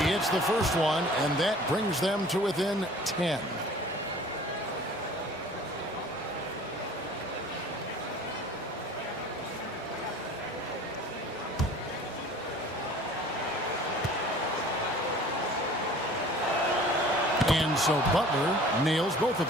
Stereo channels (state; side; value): normal; both; correlation 0.47